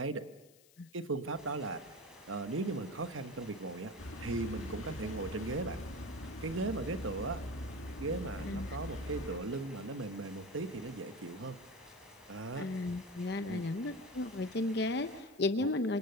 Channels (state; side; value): noise; left; hiss, 26 dB below the sound